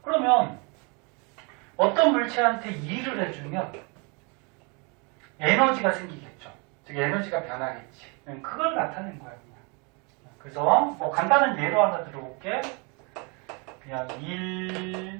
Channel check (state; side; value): quieter; left; 32.0 dB